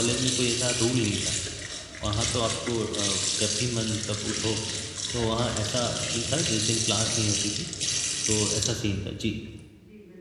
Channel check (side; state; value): both; identical; correlation 1.00